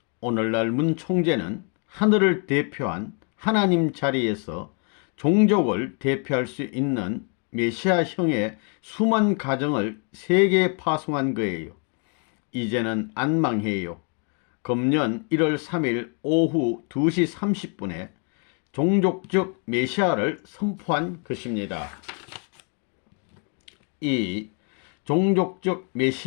오늘날 문 총재는 하늘을 대표한 하나님 자리에서 종족을 대표할 수 있는 메시아형의 수만 가정을 세계에 파송한 거예요. 이제는 안 망해요. 금년 1월 3일 오후 2시 30분에 종족적 메시아를 선포한 것입니다. 2. 종족적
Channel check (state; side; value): quieter; right; 39.2 dB